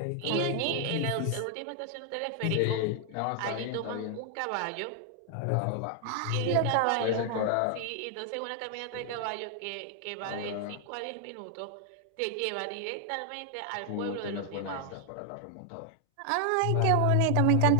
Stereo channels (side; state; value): both; different; correlation 0.00